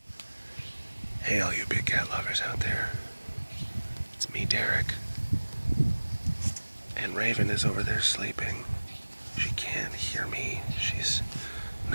all you big cat lovers out there. It's me, Derek. And Raven is over there sleeping. She can't hear me. She's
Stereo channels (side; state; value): both; inverted; correlation -1.00